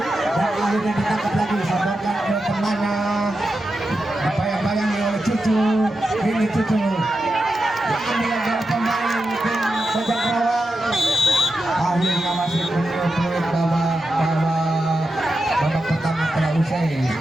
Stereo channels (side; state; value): both; normal; correlation 0.89